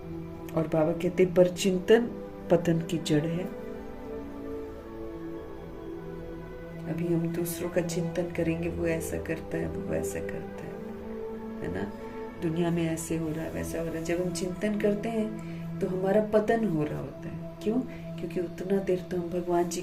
और बाबा कहते पर चिंतन पतन की जड़ है। अभी हम दूसरों का चिंतन करेंगे, वो ऐसा करता है, वो वैसा करता है ना, दुनिया में ऐसे हो रहा है, वैसा हो रहा है। जब हम चिंतन करते हैं तो हमारा पतन हो रहा होता है। क्यों? क्योंकि उतना देर तो हम भगवान जी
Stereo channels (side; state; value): both; identical; correlation 1.00